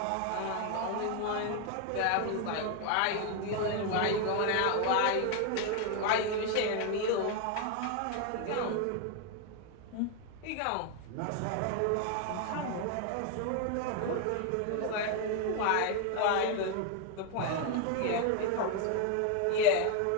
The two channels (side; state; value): both; different; correlation 0.01